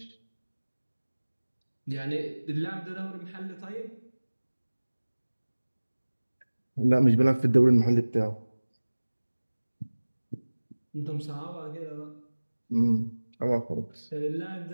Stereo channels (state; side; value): inverted; both; correlation -1.00